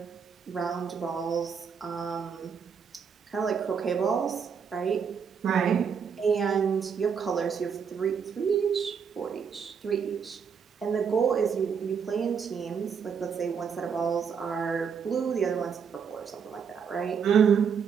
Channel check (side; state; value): left; quieter; 6.6 dB